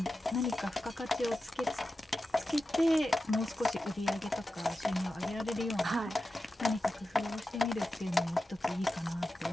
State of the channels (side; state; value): both; normal; correlation 0.92